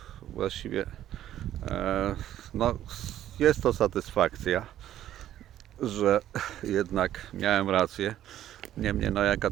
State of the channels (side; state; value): left; quieter; 12.1 dB